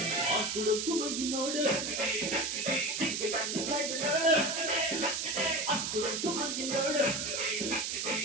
ಅಕ್ಕುಡೊಂಕು ಮಂಗಿ ನೋಡು ಹಿಂಗೆ ಬನ್ನಿ ಸ್ಲೈಡ್ ನೋಡು ಅಕ್ಕುಡೊಂಕು ಮಂಗಿ ನೋಡು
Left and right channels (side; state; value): right; noise; hiss, 2 dB below the sound